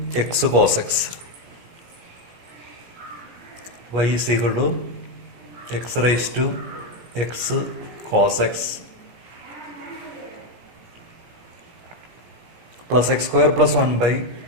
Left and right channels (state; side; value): late; left; 17 ms